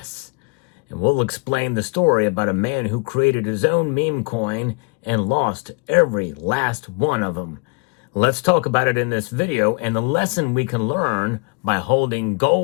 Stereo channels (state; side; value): quieter; right; 33.0 dB